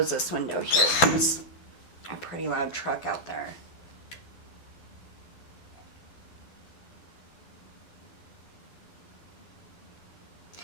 this window here. There's a pretty loud truck out there.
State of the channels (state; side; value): late; right; 12 ms